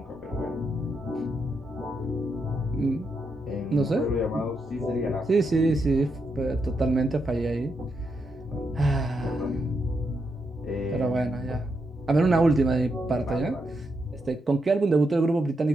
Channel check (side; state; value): both; normal; correlation 0.82